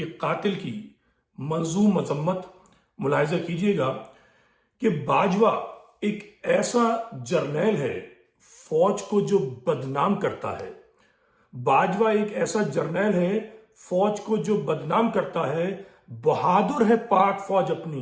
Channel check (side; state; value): both; identical; correlation 1.00